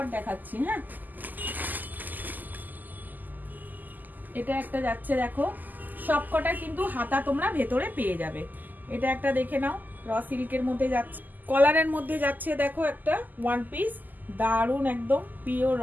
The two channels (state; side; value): late; left; 0.085 ms